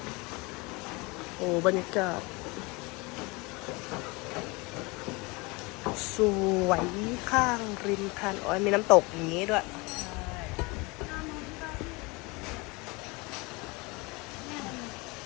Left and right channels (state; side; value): quieter; right; 26.2 dB